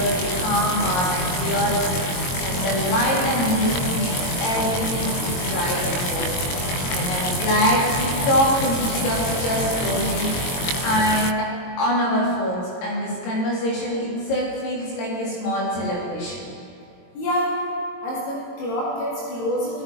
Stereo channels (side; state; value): right; late; 22 ms